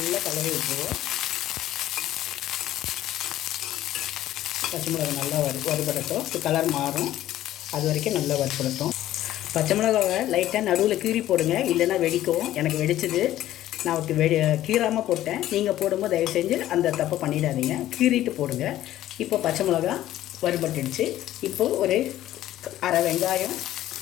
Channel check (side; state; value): right; quieter; 13.6 dB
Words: கலரி விட்டுருவோம். பச்சை மிளகா நல்லா வறுபடட்டும். கலர் மாறும், அது வரைக்கும் நல்லா வறுபடட்டும். பச்சை மிளகாவை லைட்டாக நடுவில் கீறி போடுங்க, இல்லைன்னா வெடிக்கும். எனக்கு வெடிச்சது, நான் கீறாமல் போட்டேன். நீங்கள் போடும்போது தயவு செஞ்சு அந்த தப்பை பண்ணிடாதீங்க, கீறிட்டு போடுங்க. இப்போ பச்சை மிளகா வறுபட்டுடுச்சு. இப்போது ஒரு அரை வெங்காயம்,